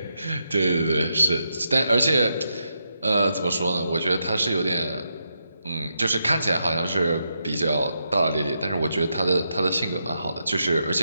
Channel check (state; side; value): inverted; both; correlation -0.83